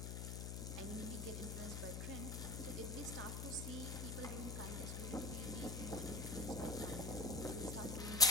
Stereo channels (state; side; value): noise; left; hum, 4 dB below the sound